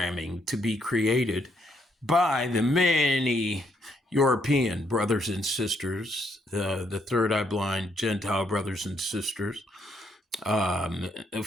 to be created by the many European brothers and sisters, the third eye blind Gentile brothers and sisters,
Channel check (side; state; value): both; normal; correlation 0.73